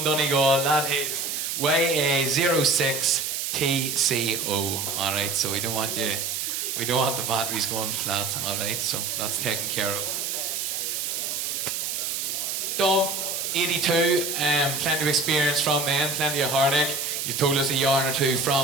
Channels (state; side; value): noise; right; hiss, 2 dB below the sound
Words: Donegal, that is YA06TCO. Alright, so we don't want the batteries going flat. Alright, so that's taken care of. Dom, 82, plenty of experience from then, plenty of heartache. You've told us a yarn or 2